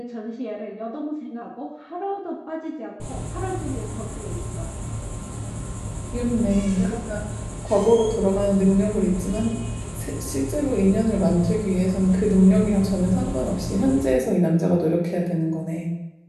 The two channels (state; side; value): identical; both; correlation 1.00